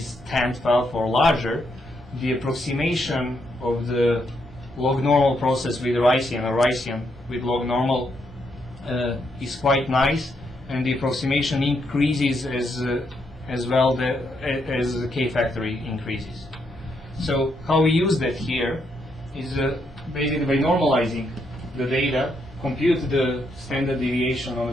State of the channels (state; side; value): normal; both; correlation 0.78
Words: 10^12 or larger, the approximation of the log normal process with Ricean or Ricean with log normal is quite nice, and the approximation increases as well as the k-factor increases. So how we use that here is basically by normalizing the data, compute the standard deviation on a